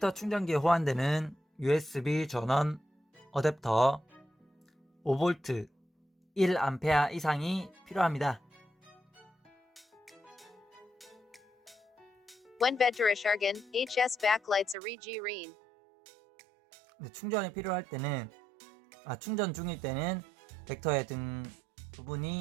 충전기에 호환되는 USB 전원 어댑터 5V 1A 이상이 필요합니다. When Vectorischen, HS backlights regieren. 네, 충전이 필요할 때는 충전 중일 때는 벡터의 등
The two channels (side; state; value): left; drops out; at 14.8 s